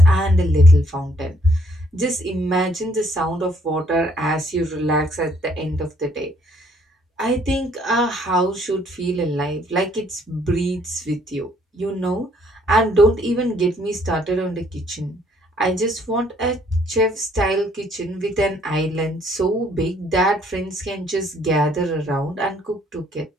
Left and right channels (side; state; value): both; normal; correlation 0.65